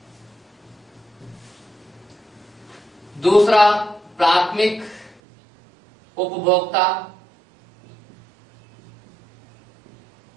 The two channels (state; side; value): drops out; left; at 5.2 s